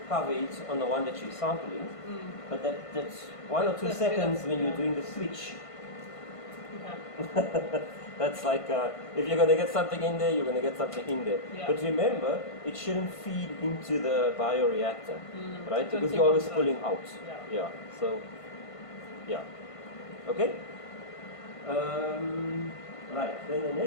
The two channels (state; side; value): late; right; 1.5 ms